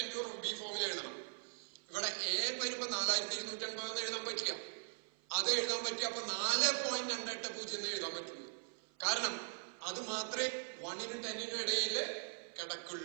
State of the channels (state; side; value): silent; left; 51 dB below the other